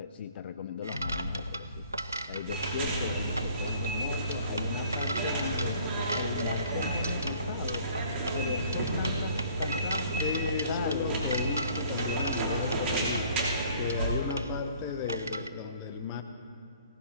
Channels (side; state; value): both; inverted; correlation -0.55